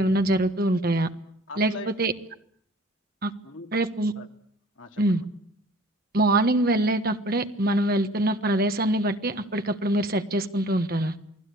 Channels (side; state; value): both; normal; correlation 0.50